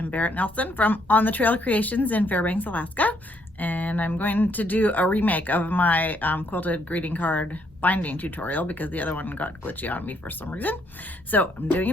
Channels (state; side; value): normal; both; correlation 0.71